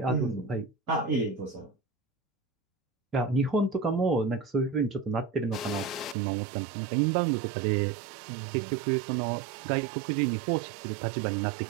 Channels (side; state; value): left; drops out; at 6.2 s